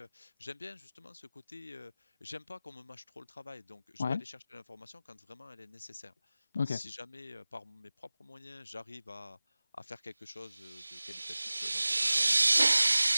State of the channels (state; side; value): inverted; both; correlation -0.98